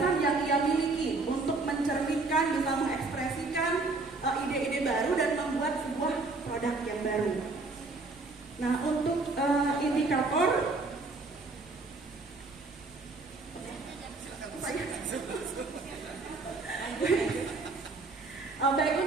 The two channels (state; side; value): quieter; left; 3.5 dB